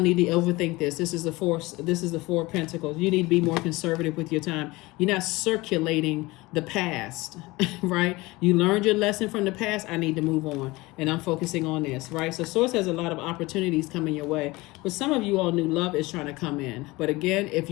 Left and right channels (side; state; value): right; quieter; 21.6 dB